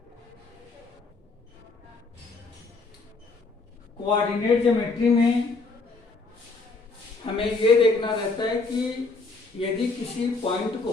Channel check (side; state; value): right; quieter; 3.7 dB